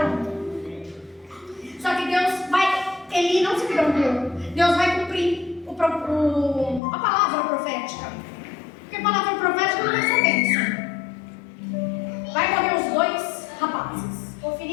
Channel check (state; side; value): drops out; right; at 6.8 s